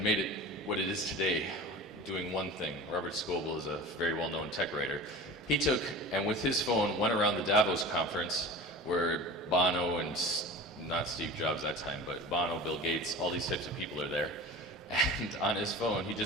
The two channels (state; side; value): normal; both; correlation 0.35